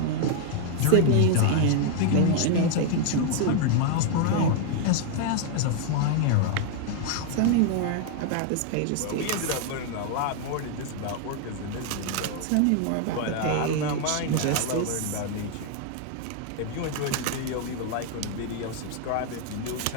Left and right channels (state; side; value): different; both; correlation 0.00